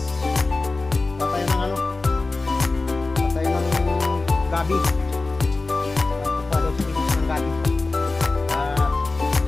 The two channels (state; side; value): quieter; right; 3.5 dB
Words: Kuha tayo ng ano, kuha tayo ng gabi. Kuha daw sa pinis ng gabi.